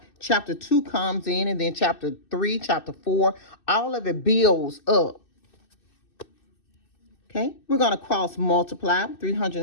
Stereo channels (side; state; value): right; late; 2.6 ms